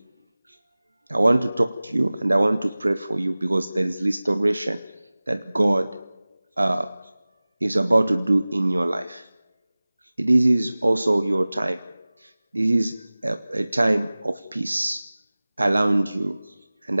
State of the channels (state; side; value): inverted; both; correlation -0.99